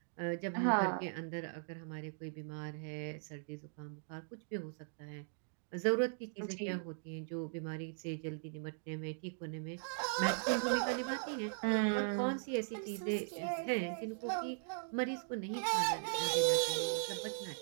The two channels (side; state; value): left; silent; digital silence